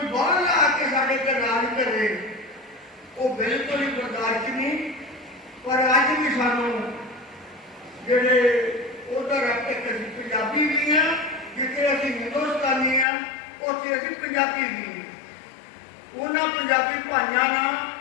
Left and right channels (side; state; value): right; drops out; at 13.1 s